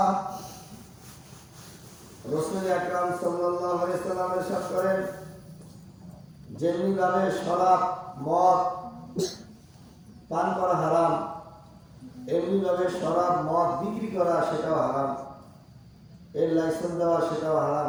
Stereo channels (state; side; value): identical; both; correlation 1.00